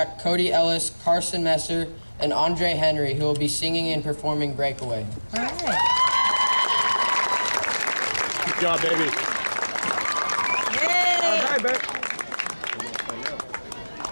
Cody Ellis, Carson Messer, and Andre Henry, who will be singing and performing Breakaway. All right. Good job, baby. Yay! All right, babe.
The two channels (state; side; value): inverted; both; correlation -1.00